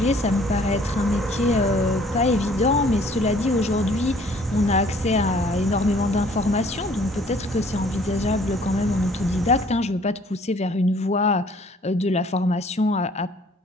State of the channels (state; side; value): normal; both; correlation 0.57